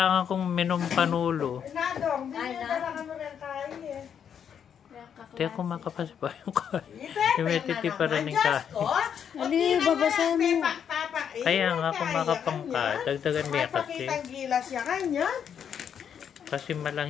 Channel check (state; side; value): quieter; right; 8.1 dB